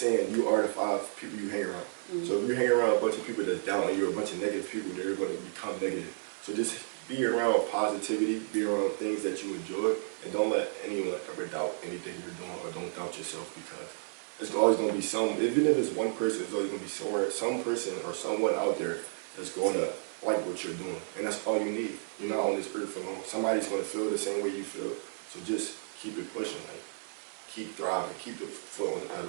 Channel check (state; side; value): silent; left; 56 dB below the other